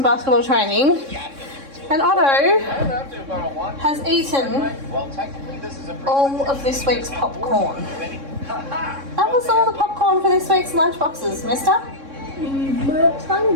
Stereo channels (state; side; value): late; left; 3.6 ms